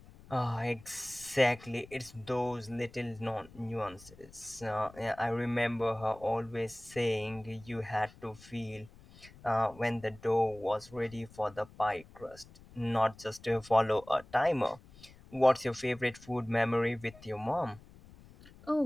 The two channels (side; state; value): left; noise; rumble, 22 dB below the sound